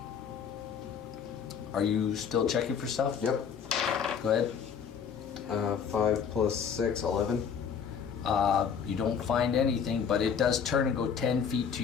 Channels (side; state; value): right; quieter; 7.1 dB